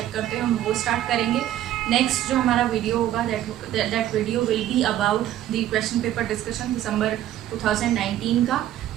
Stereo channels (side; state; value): left; quieter; 12.7 dB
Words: करते हो, हम वो स्टार्ट करेंगे. नेक्स्ट जो हमारा वीडियो होगा that video will be about the question paper discussion December 2019 का.